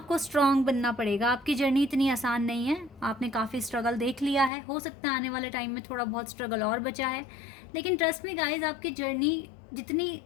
स्ट्रांग बनना पड़ेगा। आपकी जर्नी इतनी आसान नहीं है, आपने काफ़ी स्ट्रगल देख लिया है, हो सकता है आने वाले टाइम में थोड़ा बहुत स्ट्रगल और बचा है, लेकिन ट्रस्ट मी गाइज, आपकी जर्नी जितनी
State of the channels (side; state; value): right; drops out; at 4.5 s